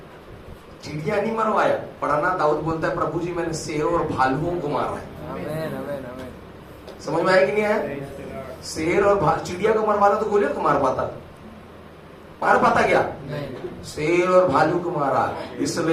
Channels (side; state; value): both; identical; correlation 1.00